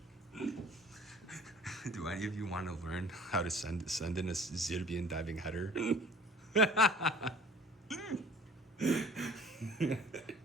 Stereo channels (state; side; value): normal; both; correlation 0.49